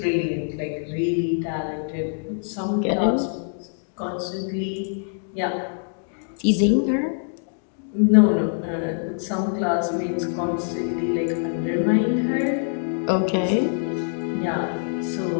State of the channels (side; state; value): right; silent; digital silence